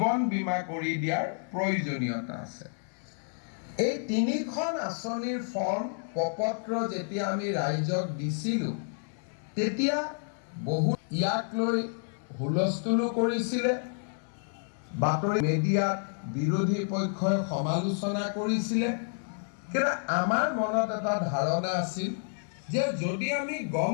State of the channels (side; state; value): right; silent; 58 dB below the other